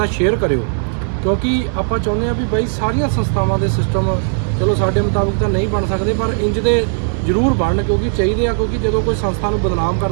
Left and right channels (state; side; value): silent; left; digital silence